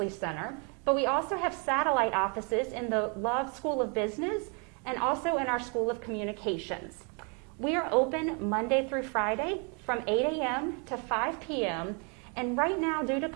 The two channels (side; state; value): left; quieter; 35.9 dB